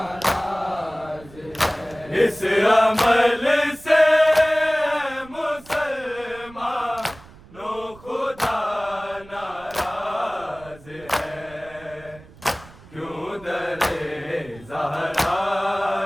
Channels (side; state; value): right; noise; rumble, 21 dB below the sound